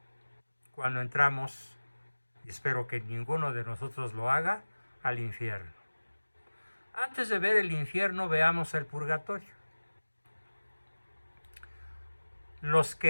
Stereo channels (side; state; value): both; inverted; correlation -1.00